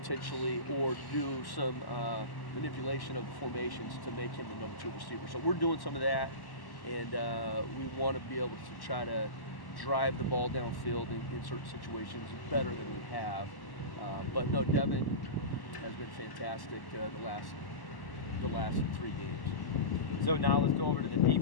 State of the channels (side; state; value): right; late; 1.1 ms